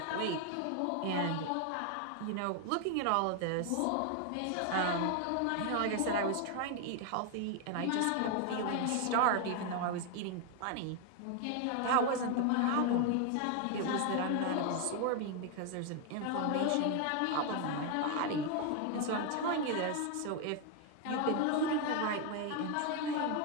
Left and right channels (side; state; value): both; different; correlation 0.01